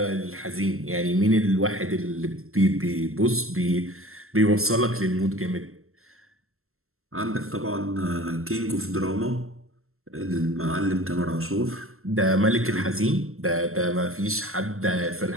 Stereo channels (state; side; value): late; left; 0.62 ms